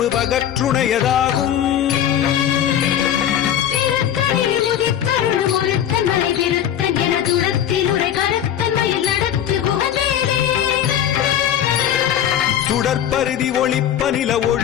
பகற்றுணையதாகும் திருத்தணியில் உதித்தருளும் ஒருத்தன் மலை விருத்தன் எனதுளத்தில் உரை கருத்தன் மயில் நடத்து குகவேலே. சுடற்பருதி ஒளிப்ப நில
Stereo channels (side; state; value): right; quieter; 10.2 dB